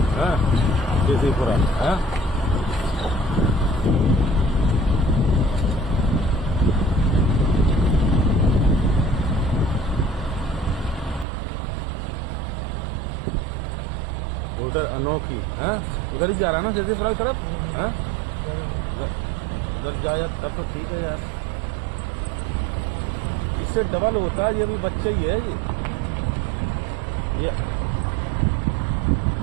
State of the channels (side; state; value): left; drops out; at 11.2 s